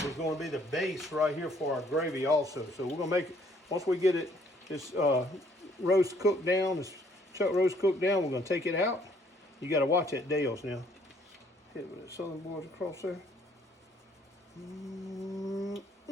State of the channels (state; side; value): normal; both; correlation 0.64